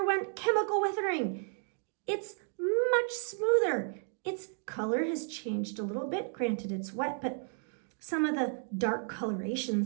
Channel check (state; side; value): silent; left; 56 dB below the other